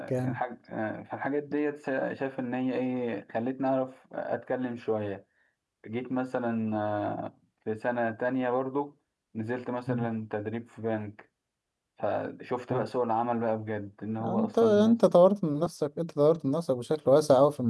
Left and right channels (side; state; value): both; identical; correlation 1.00